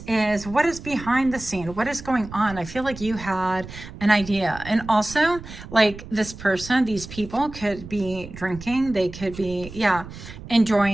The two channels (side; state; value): right; noise; rumble, 14 dB below the sound